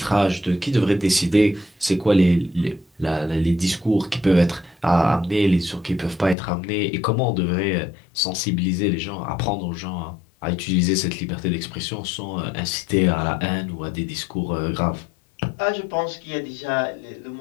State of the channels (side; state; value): right; drops out; at 6.4 s